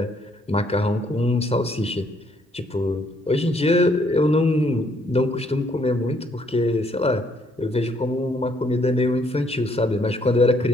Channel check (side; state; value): both; normal; correlation 0.68